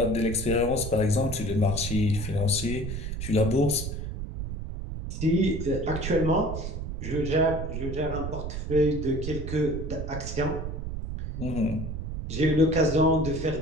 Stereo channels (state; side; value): noise; right; rumble, 5 dB below the sound